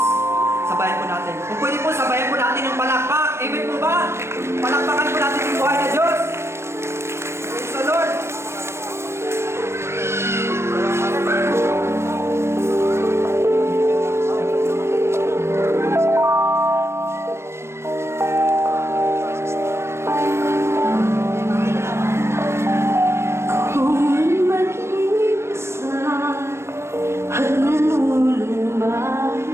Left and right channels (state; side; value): late; left; 0.13 ms